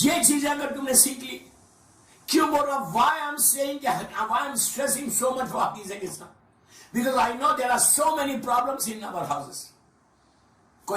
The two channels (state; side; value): identical; both; correlation 1.00